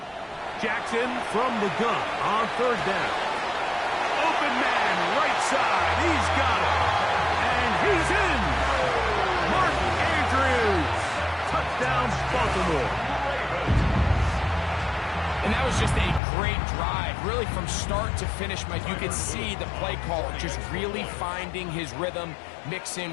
Jackson from the gun on third down. Open man, right side. He's got it. And he's in. Mark Andrews. Touchdown, Baltimore. And that was just a great drive. Really, from start to finish, Mike, you could see the play caller just really finding his rhythm. Mix in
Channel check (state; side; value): drops out; right; at 16.2 s